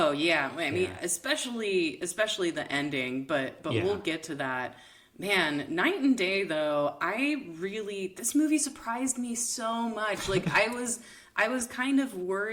yeah. I mean, especially the ending, but we'll get to that. Man, Night and Day though, this movie surprised me so much. Like I was kind of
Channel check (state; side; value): identical; both; correlation 1.00